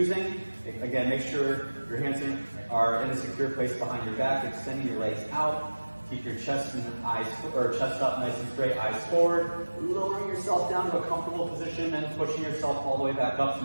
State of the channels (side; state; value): both; inverted; correlation -1.00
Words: Again, make sure your hands are in a secure place behind your back, extending your legs out. Keep your chest and eyes, or chest up nice and straight, eyes forward. Lowering yourself down to a comfortable position and pushing yourself all the way back up